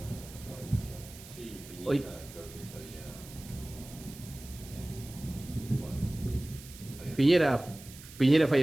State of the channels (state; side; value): noise; right; hiss, 17 dB below the sound